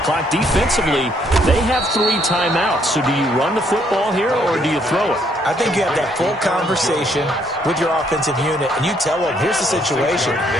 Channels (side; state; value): both; normal; correlation 0.69